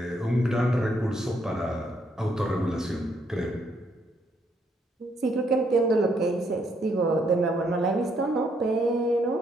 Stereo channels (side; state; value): both; normal; correlation 0.72